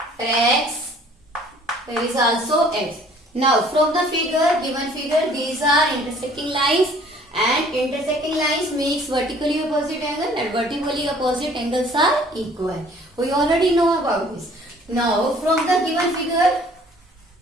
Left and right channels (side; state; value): both; normal; correlation 0.55